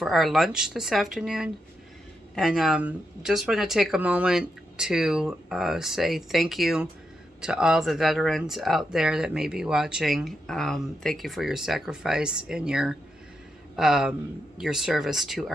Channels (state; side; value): normal; both; correlation 0.84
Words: our lunch this afternoon. And just want to take a moment to say thank you to all the veterans out there that may be watching. Thank you for your sacrifice and your service to